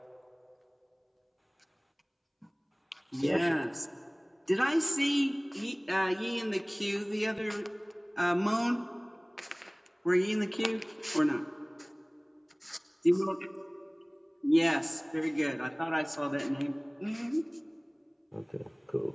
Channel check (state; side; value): identical; both; correlation 1.00